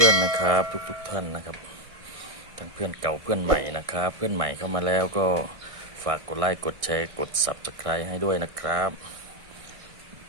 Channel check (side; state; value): left; late; 1.6 ms